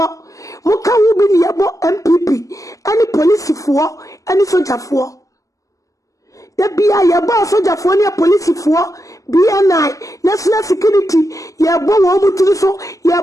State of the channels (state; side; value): late; right; 0.16 ms